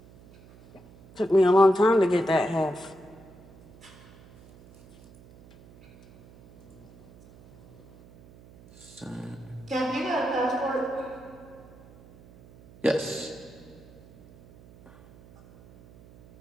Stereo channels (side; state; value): right; noise; hum, 24 dB below the sound